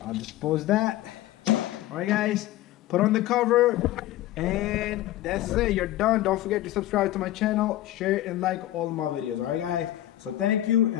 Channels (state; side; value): quieter; right; 14.8 dB